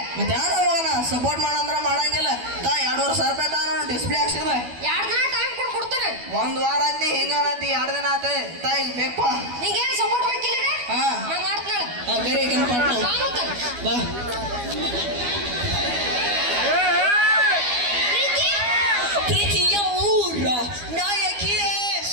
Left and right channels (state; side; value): late; left; 12 ms